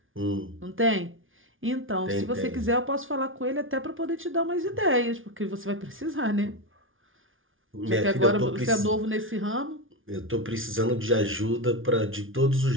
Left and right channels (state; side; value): late; left; 0.58 ms